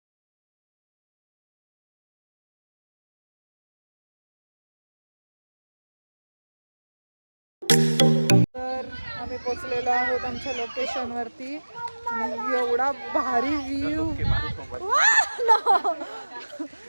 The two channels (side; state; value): both; inverted; correlation -1.00